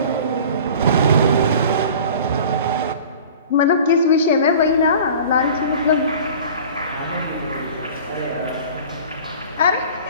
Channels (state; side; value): inverted; both; correlation -0.42